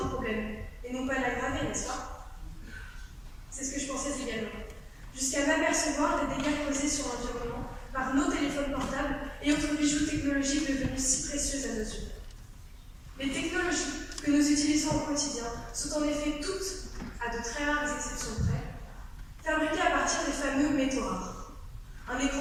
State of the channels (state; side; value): identical; both; correlation 1.00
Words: un problème et non pas l'aggraver, n'est-ce pas? C'est ce que je pensais également, jusqu'à m'apercevoir des dégâts causés sur l'environnement par nos téléphones portables et autres bijoux technologiques devenus si précieux à nos yeux. Les technologies que nous utilisons au quotidien sont en effet toutes, à de très rares exceptions près, fabriquées à partir des fameux métaux rares. Un